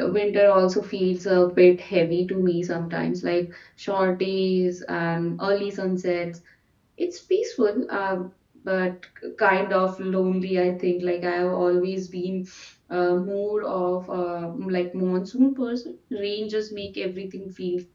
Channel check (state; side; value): identical; both; correlation 1.00